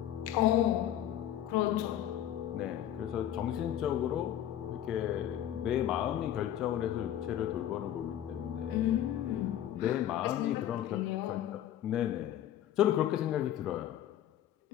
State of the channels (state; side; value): quieter; right; 11.4 dB